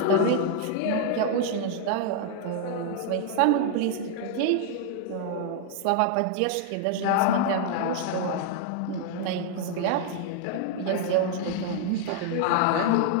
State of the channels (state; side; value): different; both; correlation 0.00